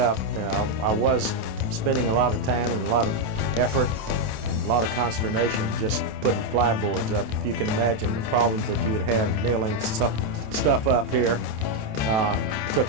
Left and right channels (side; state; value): left; late; 27 ms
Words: I was spending a lot of time and a lot of effort and a lot of consternation just putting plyboards up. If you can imagine the problems that you would have nailing stuff up here.